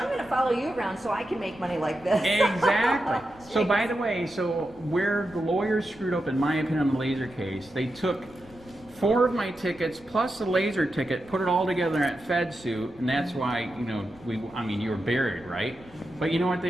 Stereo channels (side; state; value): left; noise; rumble, 23 dB below the sound